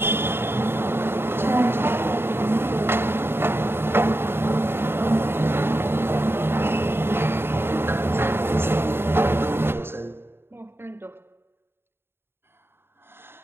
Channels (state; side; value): late; left; 0.11 ms